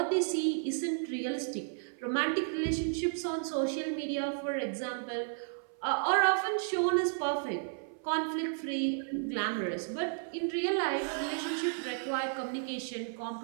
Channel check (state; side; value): silent; left; 56 dB below the other